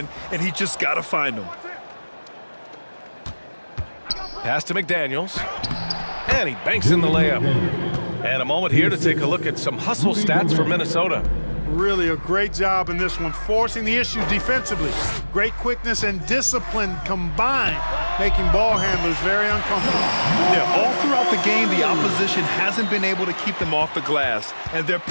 and he just got to find him. Pass to McDaniels. And he banks in the layup. And a moment here to take a look at some hustle stats for Minnesota. Really a great job in this one, forcing the issue defensively. Great quickness and discipline combined, making ball handlers very uncomfortable. Yeah, all throughout the game, the opposition hasn't been able to keep them off the glass, and they're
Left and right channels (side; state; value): both; inverted; correlation -1.00